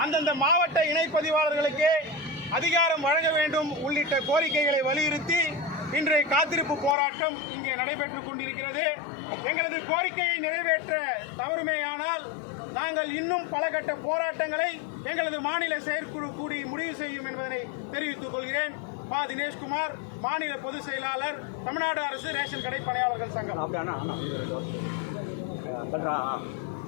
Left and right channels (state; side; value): drops out; right; at 7.0 s